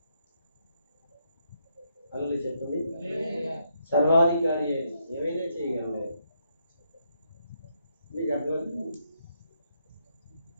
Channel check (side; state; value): both; inverted; correlation -0.76